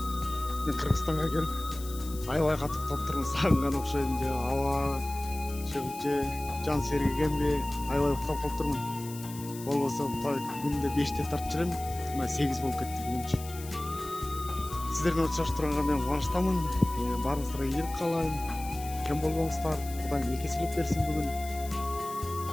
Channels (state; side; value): noise; left; hiss, 15 dB below the sound